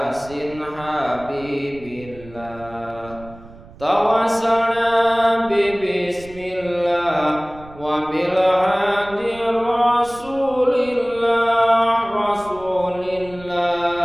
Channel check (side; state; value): right; noise; rumble, 20 dB below the sound